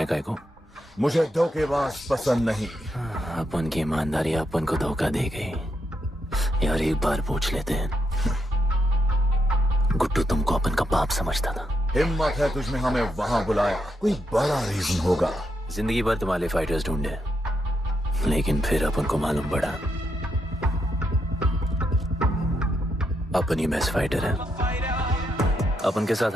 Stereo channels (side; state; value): both; normal; correlation 0.81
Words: काय को? मुझे धोखेबाज पसंद नहीं। अपन की ईमानदारी अपन को धोखा दे गई। यार एक बार पूछ लेते हैं, गुड्डू तुमको अपन का बाप समझता था। हिम्मत है तुझमें हमें वहां बुलाया, कोई बड़ा रीजन होगा। जिंदगी भर तुम्हारे फाइटर्स ढूंढे, लेकिन फिर अपन को मालूम पड़ा अपन ही बेस्ट फाइटर है। अपन के साथ